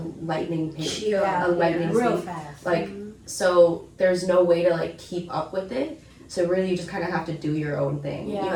lightning pace. A lightning real speed. fast. Like, so there's no way to like keep up with it. So really you just kind of have to do your own thing. You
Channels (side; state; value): both; identical; correlation 1.00